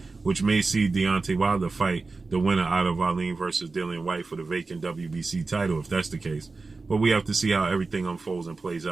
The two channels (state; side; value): quieter; left; 3.9 dB